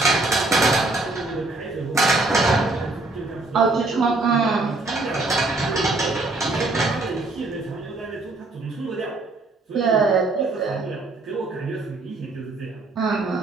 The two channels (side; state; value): left; quieter; 3.2 dB